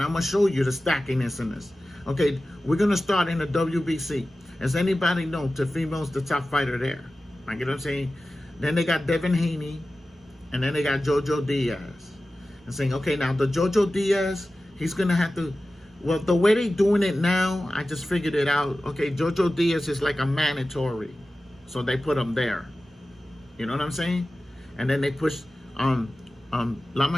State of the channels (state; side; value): normal; both; correlation 0.95